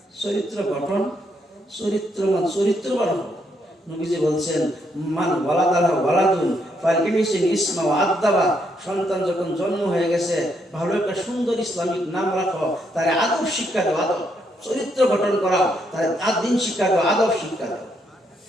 চরিত্র গঠন, চরিত্রবান, চরিত্রবান। নবীজি বলছেন মান ওয়ালাদাহু ওয়ালাদুন ফালইউহসিন ইসমা ওয়া আদাবা, সন্তান যখন জন্ম হয়ে গেছে ভালো একটা সুন্দর ইসলামিক নাম রাখো, তার আদব শিক্ষা দাও, আদব চরিত্র গঠন করাও, তার দিন শিক্ষা দাও, আদব শিক্ষা দাও।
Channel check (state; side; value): normal; both; correlation 0.76